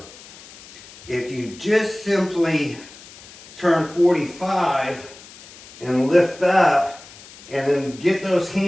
If you just simply turn 45 and lift up and then get those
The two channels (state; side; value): noise; left; hiss, 20 dB below the sound